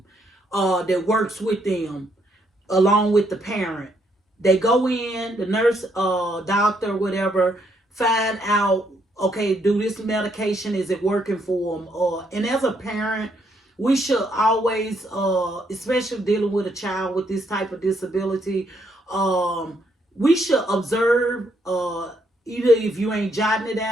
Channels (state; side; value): normal; both; correlation 0.73